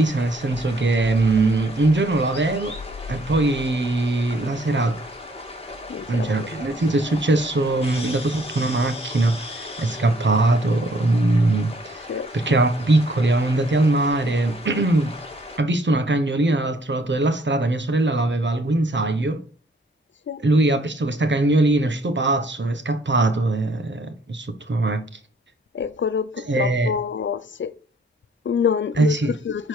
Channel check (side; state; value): both; normal; correlation 0.64